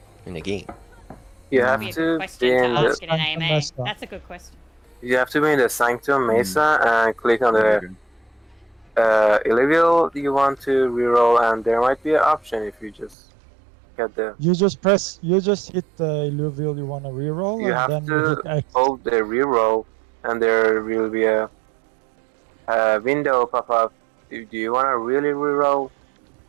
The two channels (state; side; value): drops out; left; at 13.2 s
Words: in the game? You That'd have be a to good be question in to the ask in an AMA. That's a good question. you have to be in the Sanctum Mesa and click on the Illuvial you want to reroll, and there might be an option if you just get the. You just hit the Illuvial you want to reroll, You and have then you hit to X. hold the reroll, and there will be a window pop up. Do you want to really reroll?